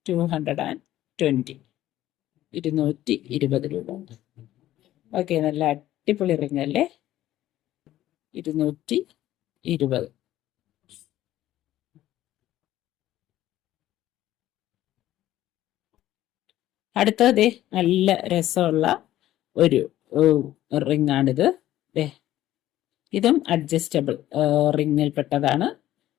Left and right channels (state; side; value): quieter; right; 13.9 dB